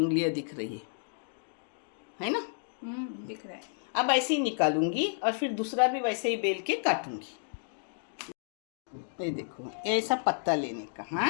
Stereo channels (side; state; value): right; silent; digital silence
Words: दिख रही है ना? दिख रहा है। अब ऐसे ही निकालूंगी और फिर दूसरा भी वैसे ही बेल के काटूंगी। ये देखो, ऐसा पत्ता लेने का। हाँ,